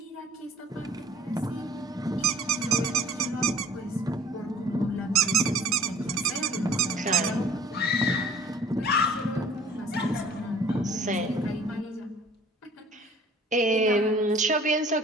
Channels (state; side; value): normal; both; correlation 0.50